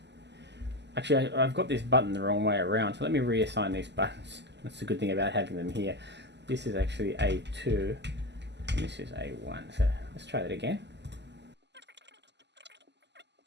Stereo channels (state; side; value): late; left; 0.50 ms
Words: Actually, I've got this button the wrong way around, so let me reassign these buttons. That's the good thing about having them here. This is actually A2, and this is A1. So let's try that again.